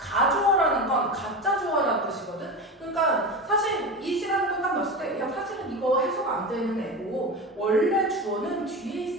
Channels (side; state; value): both; normal; correlation 0.25